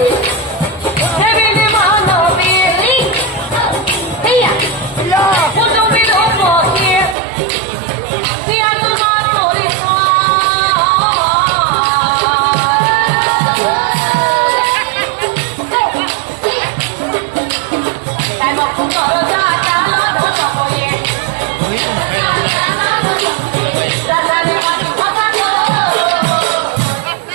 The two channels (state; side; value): drops out; left; at 7.2 s